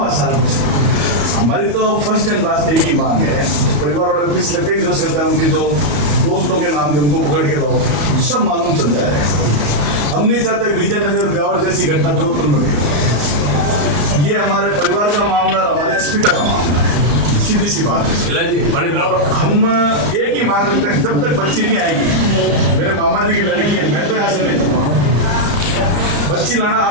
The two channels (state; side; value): late; left; 34 ms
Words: सारा कुछ। हमारी तो फर्स्ट एंड लास्ट एक ही मांग है, परिवार वाले प्लीज लगे जो करते हैं उनके जो दोस्तों के नाम थे उनको पकड़ के लाओ, सब मालूम चल जाए। हम नहीं चाहते विजयनगर ब्यावर जैसी घटना जोधपुर में भी। ये हमारे परिवार का मामला, हमारे अस्पताल का मामला है, सीधी सी बात है। और हम एक ही मांग रखते हैं, जब तक बच्ची नहीं आएगी, मेरे मामा जी की लड़की है, मैं तो यहाँ से नहीं जाऊँगा। बच्ची लाना